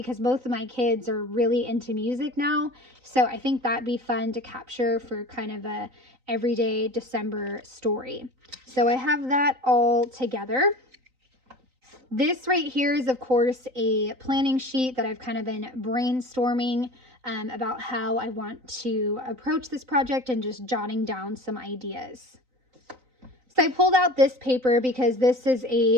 both of my kids are really into music now. So I think that'd be fun to capture for kind of a everyday December story. So I have that all together. This right here is, of course, a planning sheet that I've kind of been brainstorming about how I want to approach this project and just jotting down some ideas. So I pulled out this paper because this is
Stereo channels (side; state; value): left; late; 3.9 ms